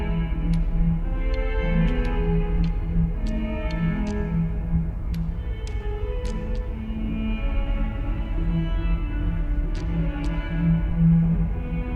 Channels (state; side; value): identical; both; correlation 1.00